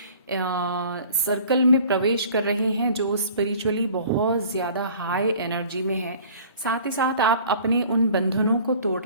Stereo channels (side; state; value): both; inverted; correlation -0.49